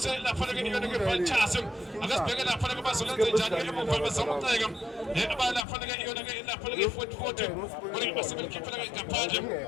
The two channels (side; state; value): right; drops out; at 5.7 s